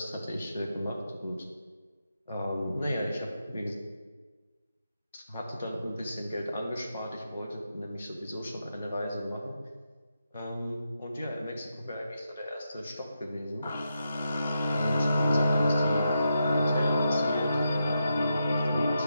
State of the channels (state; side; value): inverted; both; correlation -0.85